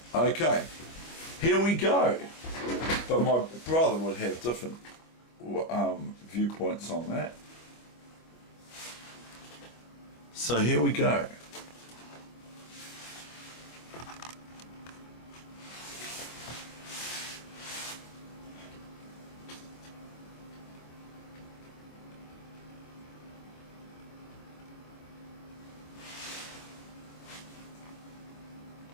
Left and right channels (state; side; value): late; right; 25 ms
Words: Okay, here we go. But my brother would have different viewpoints on that. So here we go.